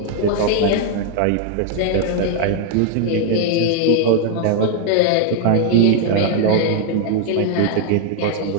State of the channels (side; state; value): both; different; correlation 0.00